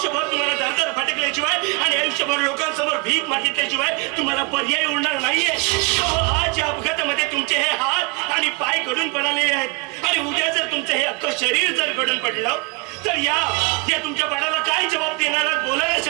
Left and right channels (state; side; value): quieter; left; 27.3 dB